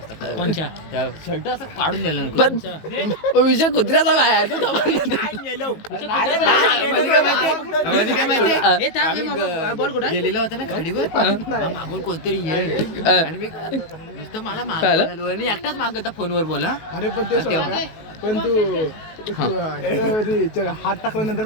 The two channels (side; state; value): right; late; 19 ms